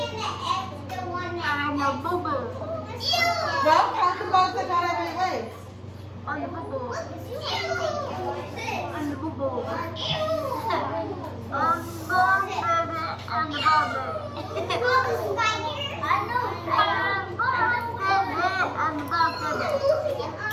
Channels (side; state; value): both; identical; correlation 1.00